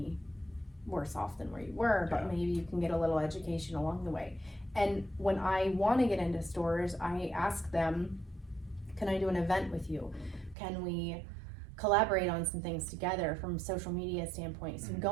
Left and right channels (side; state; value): left; drops out; at 10.6 s